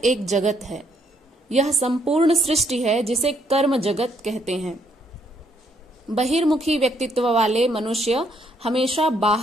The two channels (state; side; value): normal; both; correlation 0.70